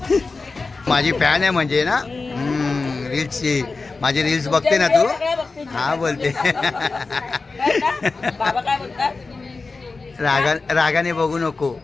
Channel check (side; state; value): right; quieter; 4.0 dB